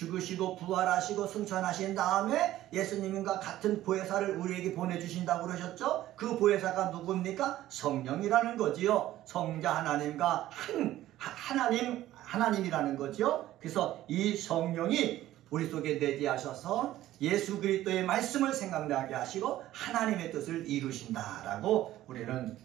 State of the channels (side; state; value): left; quieter; 14.3 dB